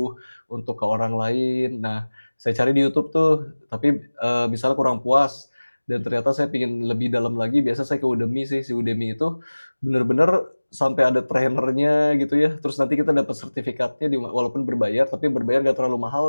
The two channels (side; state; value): both; inverted; correlation -1.00